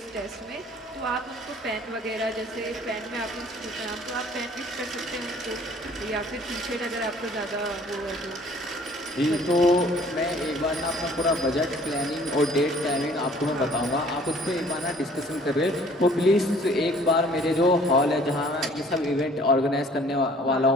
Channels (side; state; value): both; normal; correlation 0.54